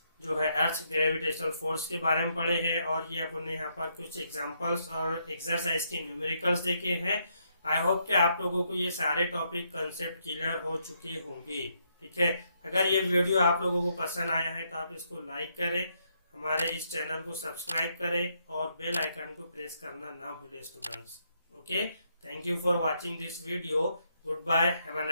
जो है अर्थ ग्रेविटेशनल फोर्स के बारे में पढ़े हैं, और ये अपने यहाँ पर कुछ एग्जांपल्स और एक्सरसाइज के न्यूमेरिकल्स देखे हैं। आई होप कि आप लोगों को ये सारे टॉपिक कंसेप्ट क्लियर हो चुके होंगे। ठीक है, अगर ये वीडियो आप लोगों को पसंद आया है तो आप इसको लाइक करें, हमारे इस चैनल को सब्सक्राइब करें और बेल आइकन को प्रेस करना ना भूलें students. Okay, thank you for watching this video. Goodbye. Have a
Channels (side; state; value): both; inverted; correlation -0.76